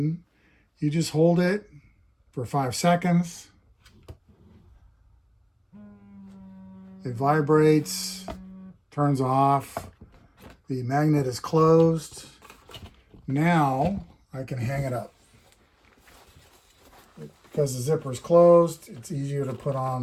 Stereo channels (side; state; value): both; identical; correlation 1.00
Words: You just hold it for 5 seconds. It vibrates, turns off. The magnet is closed. Now I can hang it up. Because the zipper is closed, it's easier to put